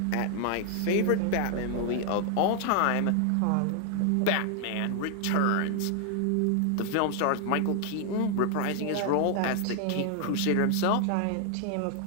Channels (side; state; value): both; different; correlation 0.00